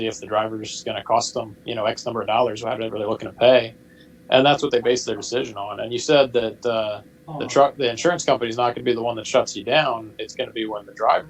if the driver is going to cost them, X number of dollars, whatever they're looking to pay, and that's what they base their decision on. And you said that the insurance company is not going to be the one that shuts you down. It's going to be when the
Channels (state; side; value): identical; both; correlation 1.00